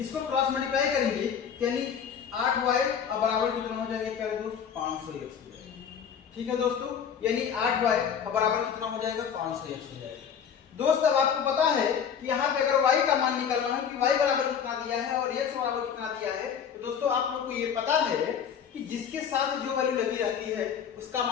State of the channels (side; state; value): right; quieter; 7.7 dB